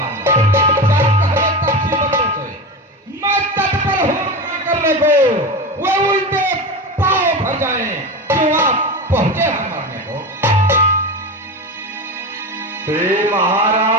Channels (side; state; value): both; normal; correlation 0.23